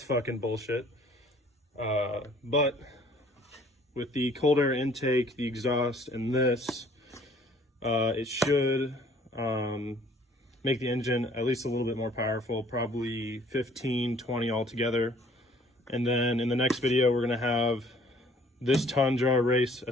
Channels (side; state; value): both; normal; correlation 0.56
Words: fucking bullshit. But with the cold air intake, the exhaust, and this, it should make the engine at least a little bit more powerful, probably 15, 20 altogether. And then in the next video, we're gonna have this Tundra race